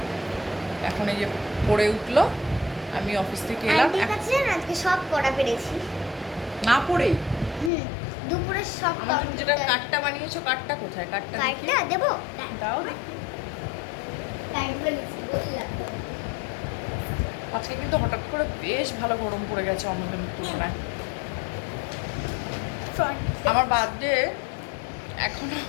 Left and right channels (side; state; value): right; drops out; at 7.7 s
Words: এখন এই যে পড়ে উঠলো, আমি অফিস থেকে এলাম। আন্টির কাছে না আজকে সব পড়া পেরেছি। না পড়েই দুপুরে সব আমার জন্য যেটা কার্ডটা বানিয়েছো, কার্ডটা কোথায়? কার্ডটা কার্ডটা দেবো? দাও দেখি। কার্ডগুলো লিখছি বললাম। আজকে কিন্তু হঠাৎ করে বেশ ভালো গরম পড়ে গেছে অন্যদিনের তুলনায়। আমার বার্থডে এখনো